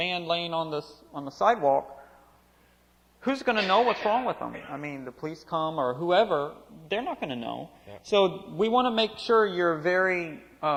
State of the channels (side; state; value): both; identical; correlation 1.00